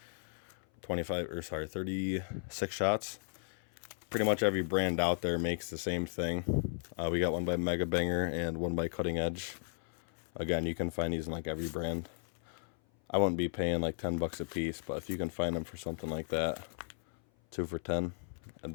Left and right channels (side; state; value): right; silent; 54 dB below the other